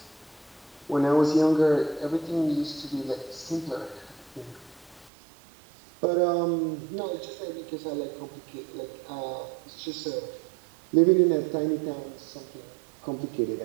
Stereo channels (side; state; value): left; drops out; at 5.1 s